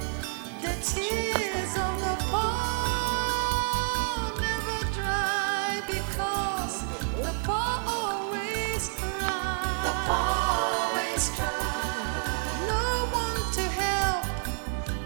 The tears of the poor always cry. No one to help,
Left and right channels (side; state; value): left; silent; 59 dB below the other